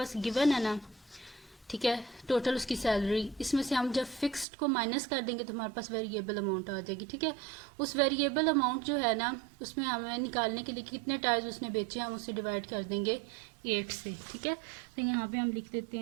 गिवन है ना, ठीक है, टोटल उसकी सैलरी, इसमें से हम जब फिक्स्ड को माइनस कर देंगे तो हमारे पास वेरिएबल अमाउंट आ जाएगी, ठीक है। उस वेरिएबल अमाउंट जो है ना, उसमें हमें निकालने के लिए कितने टायर्स उसने बेचे हम उसे डिवाइड कर देंगे 8 से, ठीक है। तो यहाँ पे हम लिख देते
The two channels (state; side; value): drops out; left; at 4.5 s